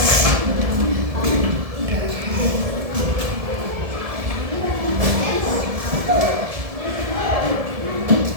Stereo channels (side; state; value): left; late; 1.7 ms